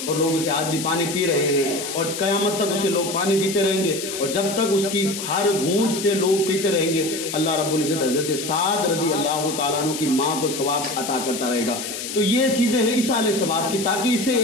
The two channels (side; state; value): left; noise; hiss, 7 dB below the sound